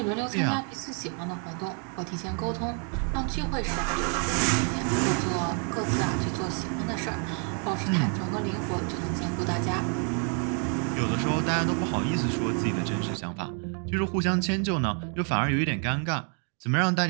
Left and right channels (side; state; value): left; quieter; 39.6 dB